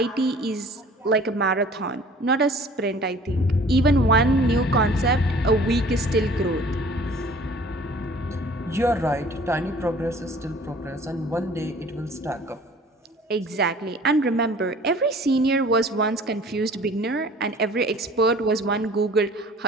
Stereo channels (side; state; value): both; normal; correlation 0.49